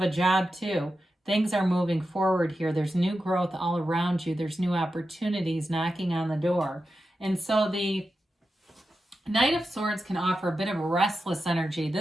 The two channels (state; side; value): normal; both; correlation 0.90